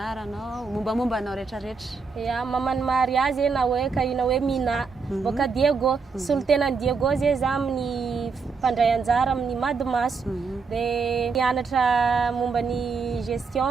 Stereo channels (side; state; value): left; quieter; 4.9 dB